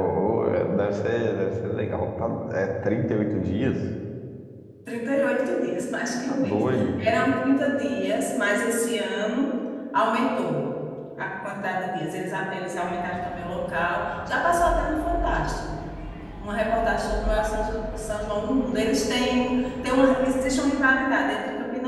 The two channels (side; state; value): both; identical; correlation 1.00